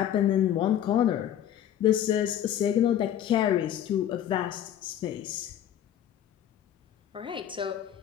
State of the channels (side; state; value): right; quieter; 10.6 dB